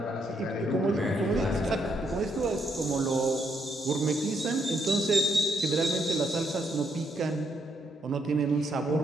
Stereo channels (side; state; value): both; normal; correlation 0.75